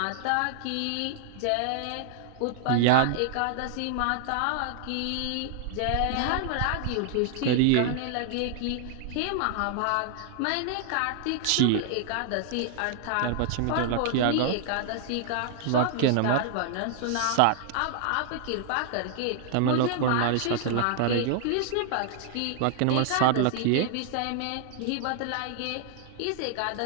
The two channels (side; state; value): both; different; correlation 0.00